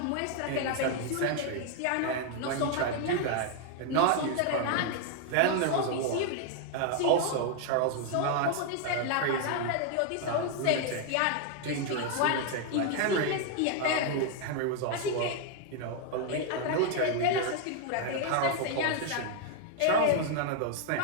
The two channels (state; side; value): different; both; correlation 0.00